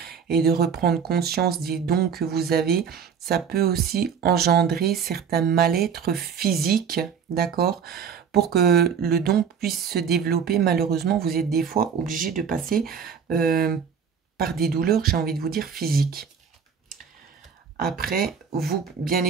et de reprendre conscience des dons que vous avez, ça peut aussi engendrer certains mal-être physiques, d'accord? Pour que le don puisse se développer, malheureusement, vous êtes des fois obligé de passer par des douleurs, j'ai envie de vous dire, physiques. Après, vous, bien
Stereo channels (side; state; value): left; quieter; 7.0 dB